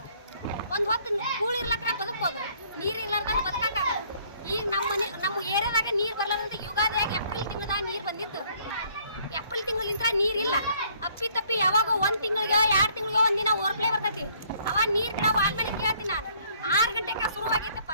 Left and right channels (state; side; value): inverted; both; correlation -0.62